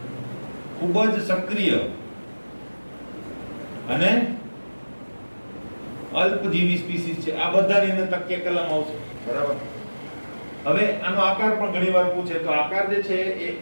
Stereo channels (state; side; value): inverted; both; correlation -1.00